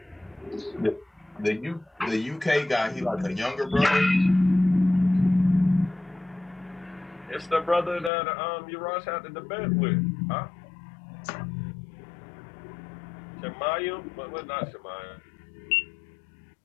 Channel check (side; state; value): right; drops out; at 8.1 s